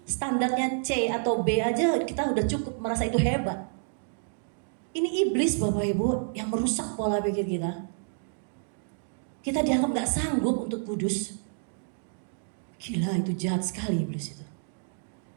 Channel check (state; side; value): silent; left; digital silence